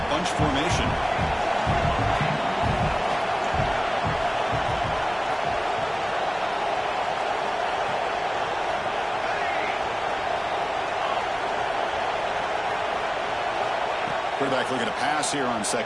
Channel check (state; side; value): identical; both; correlation 1.00